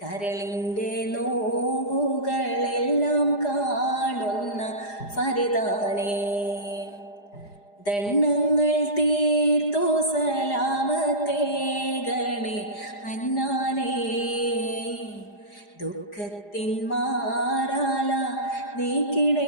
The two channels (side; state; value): right; late; 4.9 ms